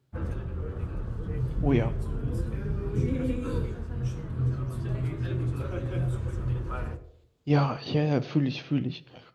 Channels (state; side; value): identical; both; correlation 1.00